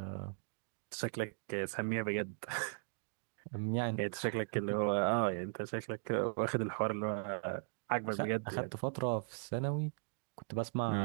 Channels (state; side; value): silent; left; digital silence